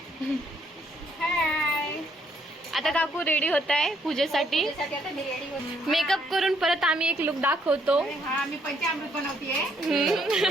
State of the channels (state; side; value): normal; both; correlation 0.70